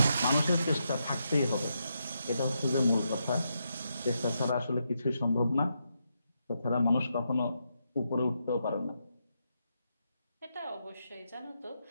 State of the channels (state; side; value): inverted; both; correlation -0.82